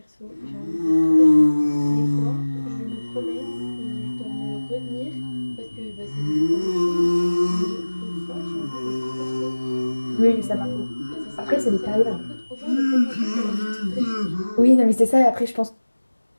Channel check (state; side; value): inverted; both; correlation -1.00